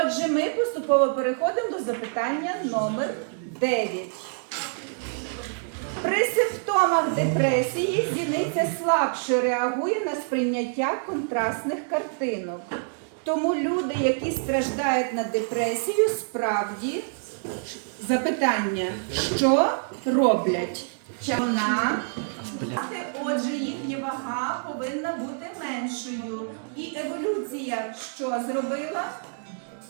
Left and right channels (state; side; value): silent; left; digital silence